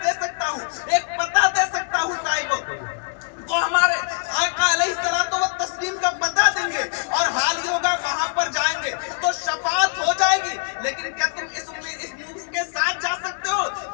दे सकता हूँ, एक पता दे सकता हूँ साहिबो, तो हमारे आका अलैहिस्सलातु व तस्लीम का बता देंगे और हाल ही होगा वहां पर जाएंगे तो शफाअत हो जाएगी। लेकिन क्या तुम इस उम्मीद के साथ जा सकते हो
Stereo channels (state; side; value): quieter; right; 38.2 dB